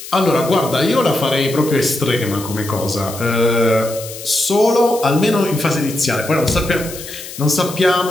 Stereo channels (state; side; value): noise; left; hiss, 12 dB below the sound